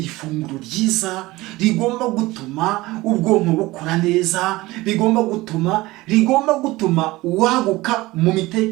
ifunguro ryiza rigomba gutuma ubwonko bukora neza, rigomba gutuma waguka mu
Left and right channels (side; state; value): left; quieter; 19.6 dB